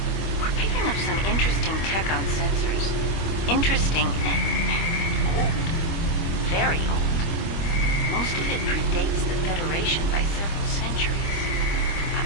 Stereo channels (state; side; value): late; right; 25 ms